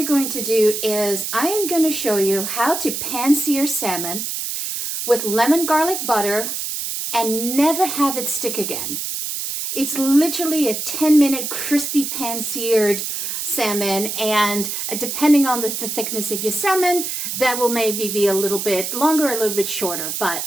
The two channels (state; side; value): noise; right; hiss, 4 dB below the sound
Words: going to do is I am going to show you how to pan-sear salmon with lemon garlic butter and never have it stick again. It's literally a 10-minute crispy pan-seared salmon, and depending on the thickness of your salmon, that will maybe be a little bit longer, a little bit shorter. But